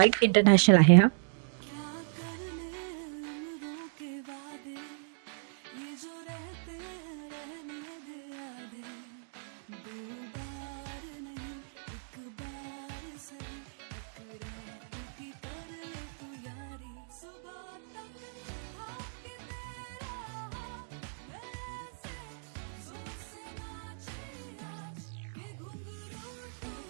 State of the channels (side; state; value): left; silent; digital silence